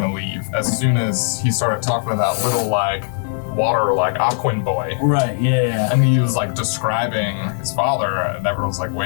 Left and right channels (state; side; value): silent; right; digital silence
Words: leave as soon as he started talking to that little water Aquan boy. Right. Yeah. And he was describing his father, and everyone's like,